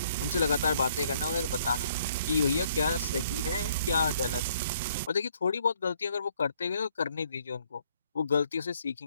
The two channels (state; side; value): inverted; both; correlation -0.66